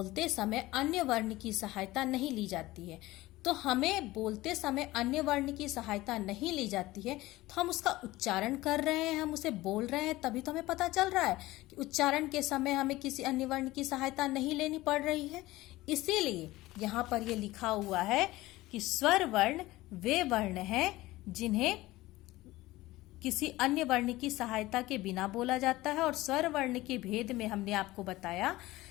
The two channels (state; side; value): quieter; right; 18.2 dB